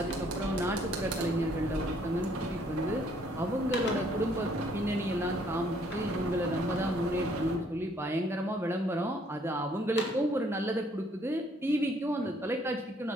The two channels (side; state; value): both; normal; correlation 0.64